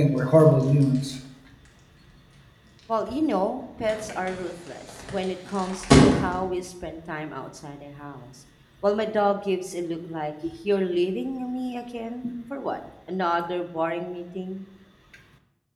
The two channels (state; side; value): identical; both; correlation 1.00